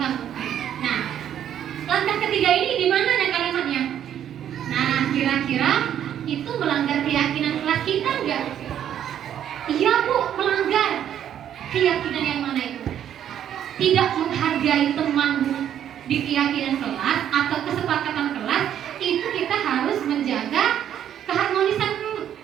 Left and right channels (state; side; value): quieter; left; 10.1 dB